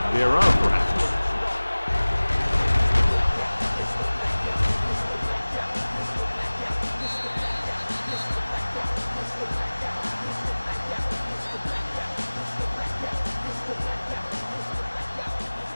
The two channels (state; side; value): inverted; both; correlation -1.00